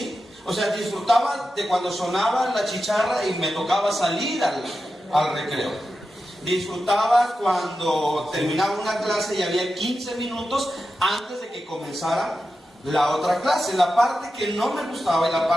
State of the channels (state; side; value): normal; both; correlation 0.91